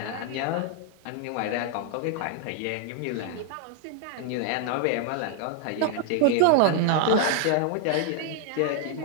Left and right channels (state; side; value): different; both; correlation 0.00